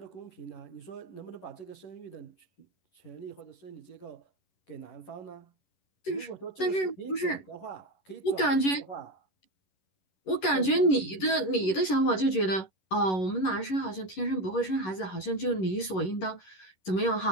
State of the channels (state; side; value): late; right; 11 ms